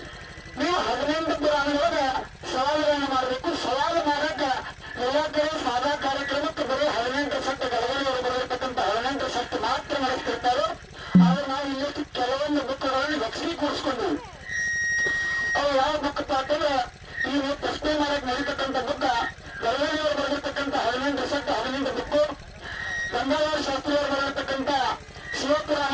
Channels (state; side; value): identical; both; correlation 1.00